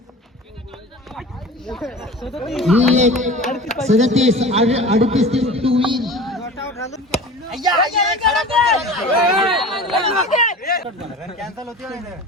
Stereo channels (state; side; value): normal; both; correlation 0.37